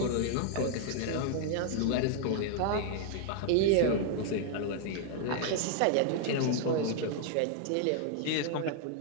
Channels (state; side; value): different; both; correlation 0.00